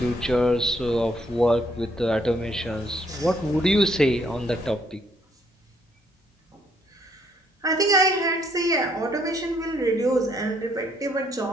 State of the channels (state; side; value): normal; both; correlation 0.68